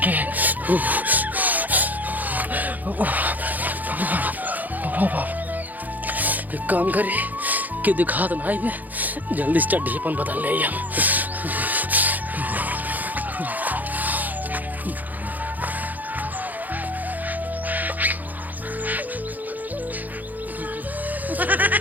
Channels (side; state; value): left; late; 0.082 ms